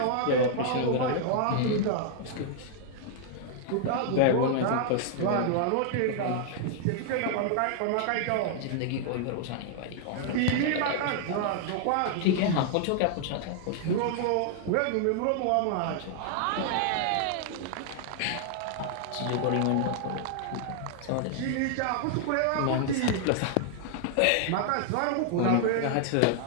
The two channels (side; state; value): both; different; correlation -0.01